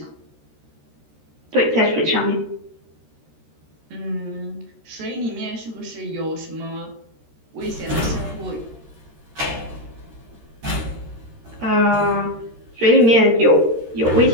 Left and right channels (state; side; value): late; left; 13 ms